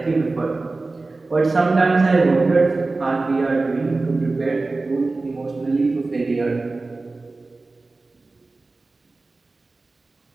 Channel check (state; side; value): quieter; left; 3.4 dB